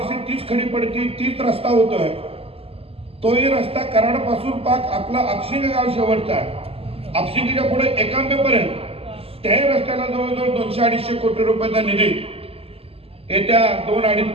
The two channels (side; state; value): left; late; 0.28 ms